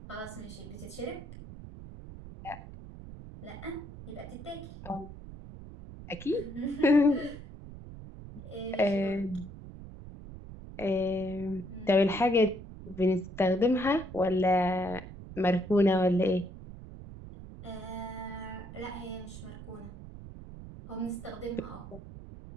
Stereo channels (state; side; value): noise; right; rumble, 13 dB below the sound